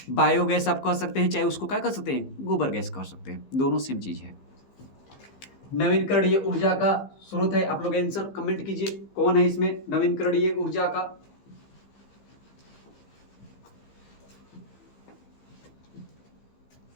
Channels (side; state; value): right; late; 15 ms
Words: बायोगैस आप कह सकते हैं, चाहे उसको क्या कह सकते हैं, गोबर गैस कह सकते हैं, दोनों सेम चीज है। नवीकरणीय ऊर्जा का स्रोत है। आप लोग आंसर कमेंट कीजिए कौन है इसमें नवीकरणीय ऊर्जा का।